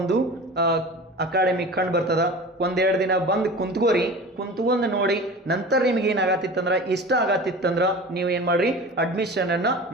ಅಕಾಡೆಮಿ ಕಂಡು ಬರ್ತದ. ಒಂದೆರಡು ದಿನ ಬಂದು ಕುಂತ್ಕೊಂಡು ನೋಡಿ, ನಂತರ ನಿಮ್ಗೆ ಏನಾಗತ್ತಿತ್ತಂದ್ರ ಇಷ್ಟ ಆಗತ್ತಿತ್ತಂದ್ರ ನೀವು ಏನು ಮಾಡ್ರಿ, ಅಡ್ಮಿಷನ್ ಅನ್ನ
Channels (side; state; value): both; normal; correlation 0.36